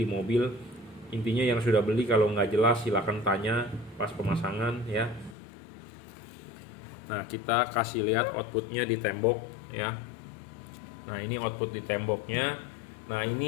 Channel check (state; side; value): drops out; right; at 5.4 s